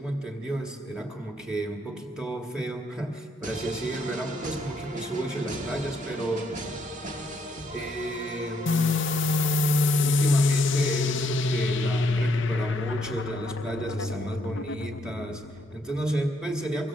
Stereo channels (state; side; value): normal; both; correlation 0.73